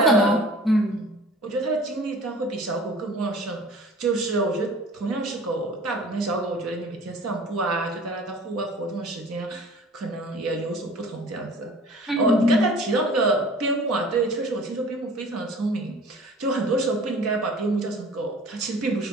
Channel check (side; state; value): both; normal; correlation 0.46